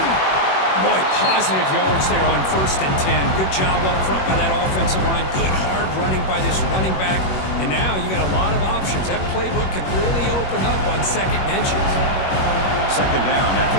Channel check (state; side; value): late; right; 21 ms